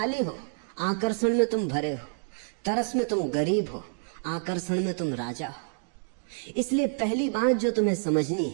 हो, आकर्षण में तुम भरे हो। तरस में तुम गरीब हो, आकर्षण में तुम राजा हो। इसलिए पहली बात जो तुम्हें समझनी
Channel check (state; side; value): silent; left; digital silence